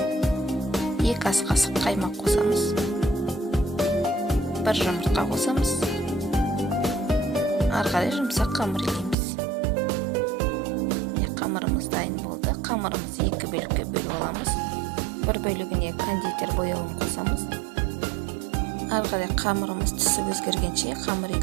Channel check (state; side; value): drops out; left; at 9.2 s